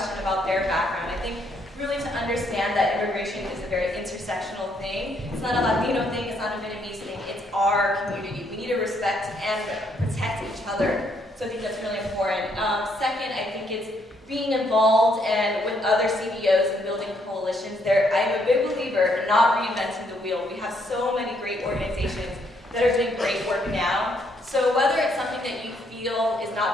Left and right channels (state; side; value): normal; both; correlation 0.72